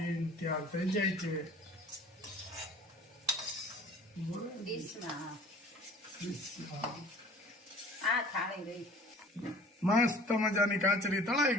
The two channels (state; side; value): normal; both; correlation 0.47